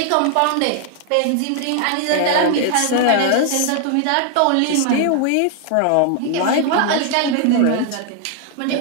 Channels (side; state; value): both; different; correlation 0.00